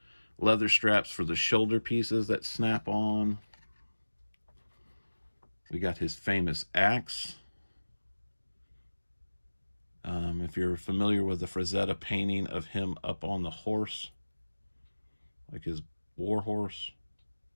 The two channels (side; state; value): both; inverted; correlation -1.00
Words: leather straps for the shoulder pieces that snap on. We got his famous axe. If you're familiar with the Frazetta painting of him up on the horse, like his war horse,